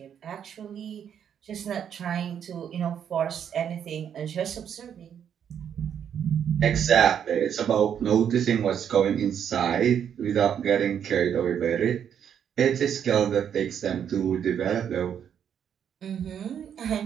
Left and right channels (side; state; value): left; quieter; 8.6 dB